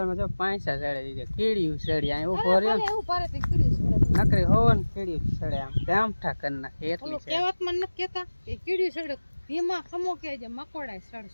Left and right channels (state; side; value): inverted; both; correlation -1.00